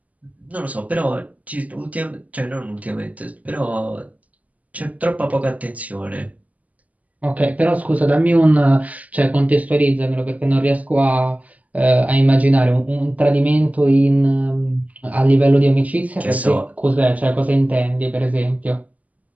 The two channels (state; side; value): late; left; 0.074 ms